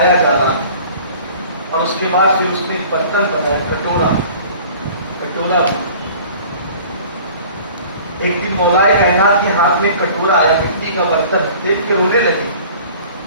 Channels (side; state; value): both; inverted; correlation -0.46